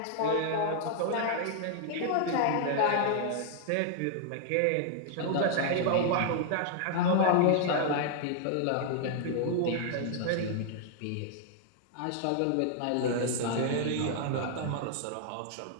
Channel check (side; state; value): both; different; correlation 0.00